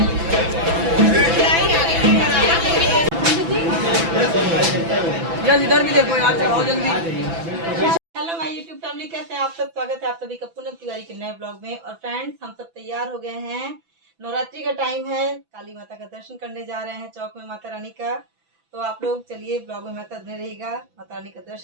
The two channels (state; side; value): late; left; 6.0 ms